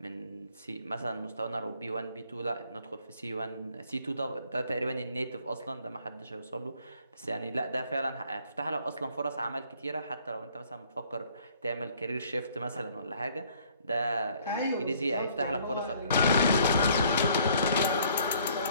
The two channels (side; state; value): both; inverted; correlation -0.61